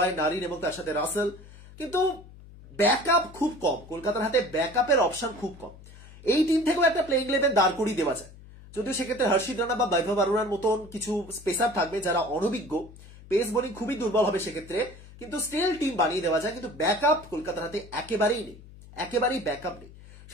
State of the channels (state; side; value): noise; left; hum, 19 dB below the sound